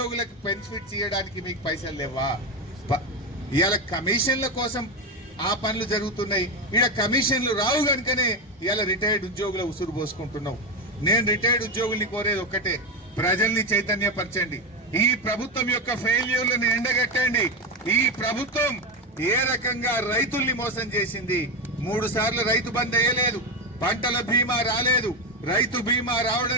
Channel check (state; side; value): normal; both; correlation 0.13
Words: బెనిఫిట్స్ ఇవ్వడానికి మీకు పైసలు లేవా? ఇవాళ కమిషన్ల కోసం ఆ పనులు జరుగుతున్నాయి, ఇక్కడ కమిషన్లు రావు కనుకనే ఇవాళ రిటైర్డ్ ఉద్యోగుల ఉసురు పోసుకుంటున్నావు. నేను రిటైర్డ్ ఉద్యోగుల్ని కోరేది ఒక్కటే, ప్రజల్ని చైతన్యపరచండి. ఈ ప్రభుత్వం యొక్క ఫెయిల్యూర్లను ఎండగట్టండి. ఈ ప్రభుత్వం ఏ రకంగా రైతుల్ని మోసం చేసింది. 3 సార్లు రైతు బంద్ వేయలేదు, పంటల బీమా రాలేదు, రైతు బీమా